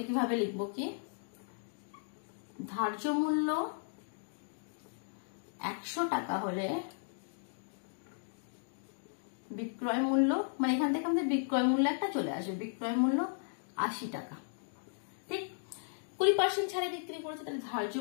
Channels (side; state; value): right; silent; digital silence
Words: কিভাবে লিখবো, কি ধার্য মূল্য 100 টাকা হলে বিক্রয় মূল্য, মানে এখান থেকে আমাদের বিক্রয় মূল্য একটা চলে আসবে, বিক্রয় মূল্য 80 টাকা। ঠিক, 20% ছাড়ে বিক্রি করেছে, তাহলে ধার্য